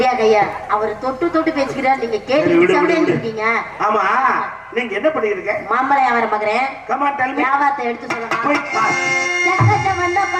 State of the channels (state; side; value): identical; both; correlation 1.00